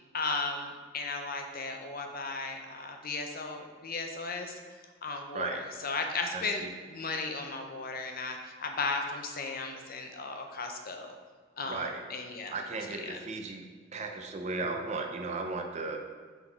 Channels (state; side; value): normal; both; correlation -0.03